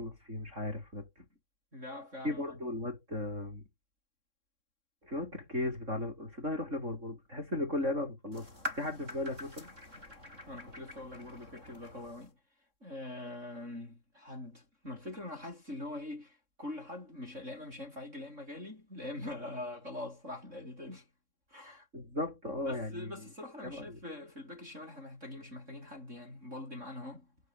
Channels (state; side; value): late; left; 3.6 ms